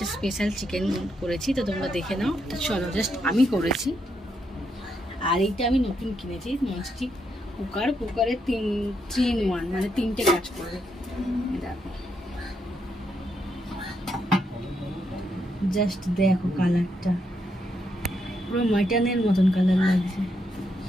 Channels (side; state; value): both; normal; correlation 0.79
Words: স্পেশাল চিকেন করেছি, তো তোমরা দেখে নাও। তো চলো, জাস্ট আমি করেছি। আর এইটা আমি নতুন কিনেছি, ননস্টিক কুকারে 3-in-1 মানে 3টে কাজ করবে। দেখো, জাস্ট দেখো কালারটা, পুরো মাটনের মতন কালার লাগছে।